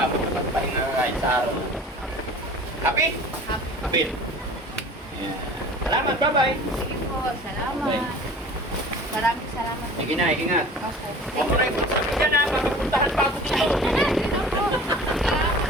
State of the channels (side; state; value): both; normal; correlation 0.42